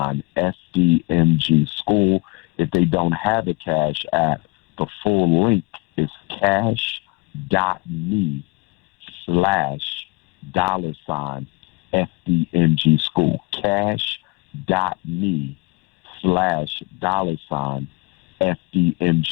FDMG School. If they don't have a Cash App, the full link is cash.me/$ FDMG School. Cash.me/$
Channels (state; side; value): quieter; right; 26.5 dB